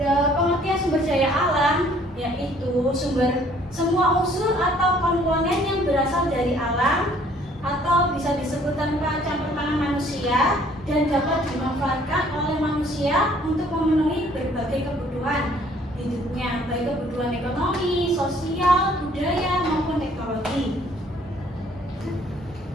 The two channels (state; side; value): normal; both; correlation 0.59